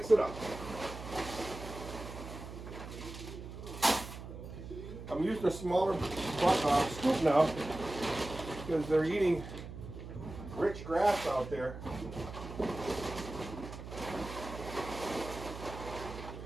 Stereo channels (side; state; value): right; noise; hum, 11 dB below the sound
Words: it up. I'm using a smaller scoop now because they're eating rich grass out there.